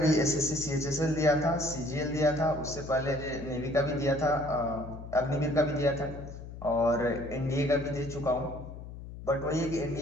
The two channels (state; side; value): noise; left; hum, 12 dB below the sound